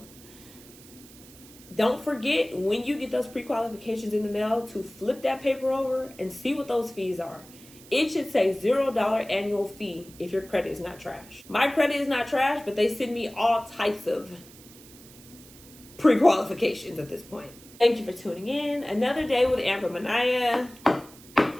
Don't forget, when you get those pre-qualifications in the mail, to flip that paper over and see what those fees are. It should say $0 annual fee if your credit is not trash. My credit is not trash, but they send me all types of pre-qualifications at this point. Thank you for tuning in. Another day with Amber Manaya.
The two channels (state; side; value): noise; right; hiss, 21 dB below the sound